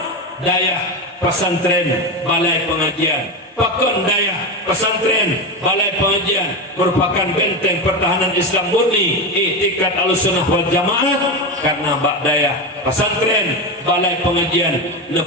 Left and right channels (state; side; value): normal; both; correlation 0.17